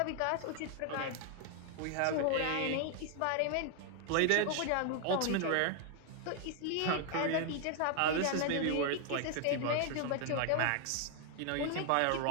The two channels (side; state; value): both; different; correlation 0.00